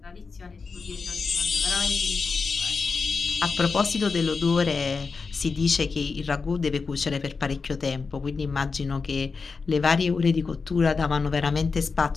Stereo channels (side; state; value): right; quieter; 4.7 dB